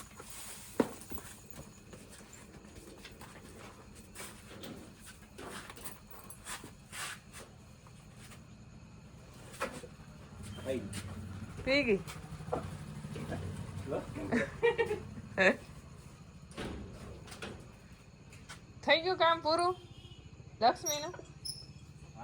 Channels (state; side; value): identical; both; correlation 1.00